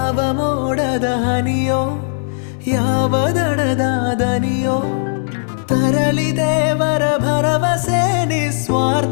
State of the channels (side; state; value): right; silent; digital silence